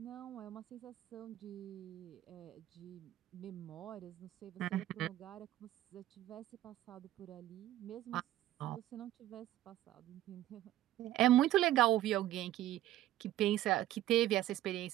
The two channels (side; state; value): left; quieter; 14.1 dB